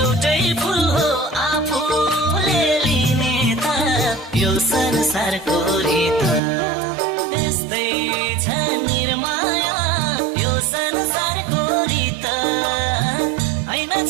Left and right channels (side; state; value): left; drops out; at 6.4 s